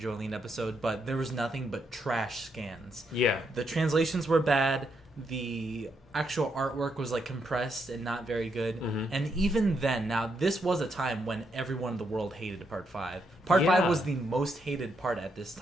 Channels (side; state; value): both; normal; correlation 0.78